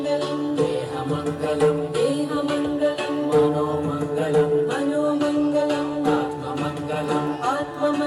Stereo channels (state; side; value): identical; both; correlation 1.00